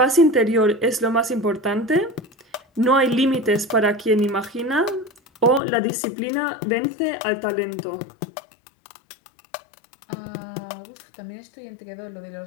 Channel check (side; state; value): right; drops out; at 5.6 s